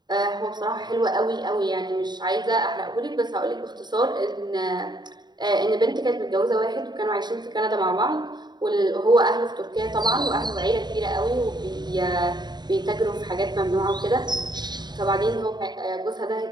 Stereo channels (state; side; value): late; left; 0.21 ms